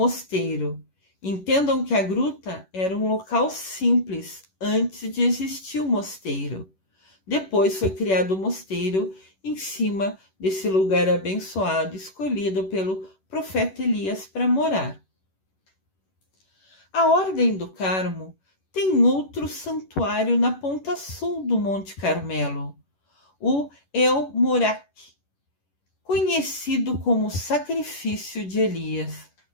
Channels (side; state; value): right; late; 11 ms